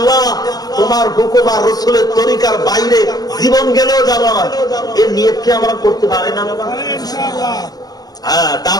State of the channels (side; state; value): right; late; 0.19 ms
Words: তোমার হুকুম আর রাসূলের তরিকার বাইরে জীবন গেলেও যাব না? এর নিয়ত কি আমরা করতে পারি না বাবা? হ্যাঁ,